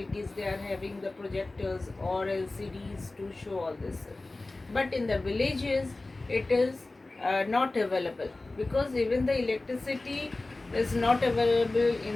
They are having the projectors or LCDs to show all this. But in the villages it is not available, because even the electricity is not available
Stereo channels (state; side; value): quieter; right; 3.1 dB